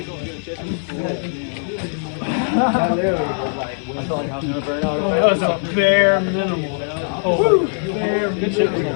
felt like I was gonna burn out. That was a bare minimal. Oh, bare Good shit.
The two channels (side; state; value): right; silent; 59 dB below the other